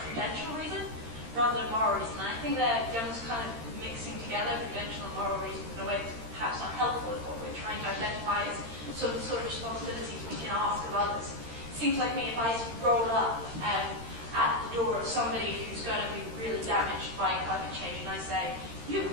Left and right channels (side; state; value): left; late; 13 ms